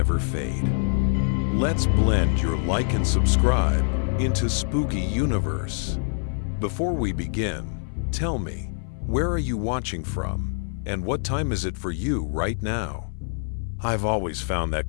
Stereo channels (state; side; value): silent; right; 60 dB below the other